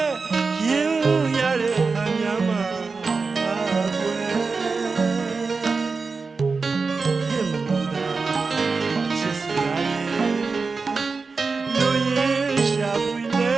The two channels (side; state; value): left; quieter; 4.4 dB